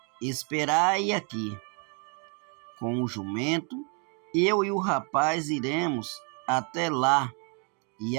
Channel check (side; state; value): left; quieter; 36.5 dB